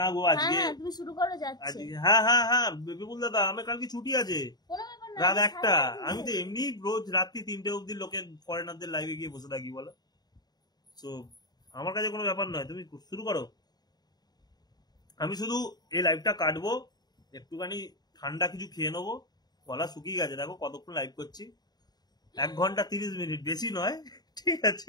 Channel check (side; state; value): right; late; 0.20 ms